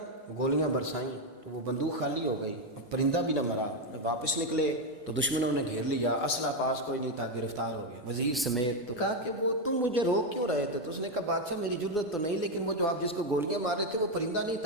گولیاں برسائیں تو وہ بندوق خالی ہو گئی، پرندہ بھی نہ مرا۔ واپس نکلے تو دشمنوں نے گھیر لیا، اسلحہ پاس کوئی نہیں تھا، گرفتار ہو گیا وزیر سمیت۔ تو کہا کہ وہ تم مجھے روک کیوں رہے تھے؟ تو اس نے کہا بادشاہ میری ضرورت تو نہیں، لیکن وہ جو آپ جس کو گولیاں مار رہے تھے وہ پرندہ نہیں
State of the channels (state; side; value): normal; both; correlation 0.06